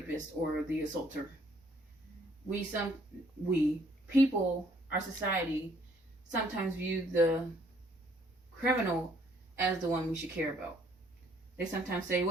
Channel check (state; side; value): normal; both; correlation 0.64